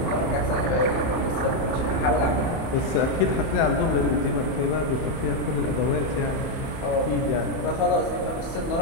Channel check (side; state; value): right; late; 30 ms